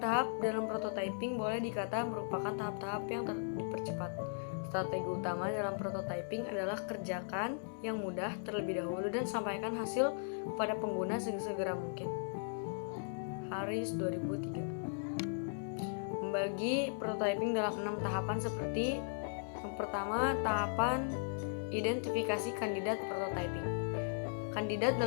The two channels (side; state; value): right; silent; 53 dB below the other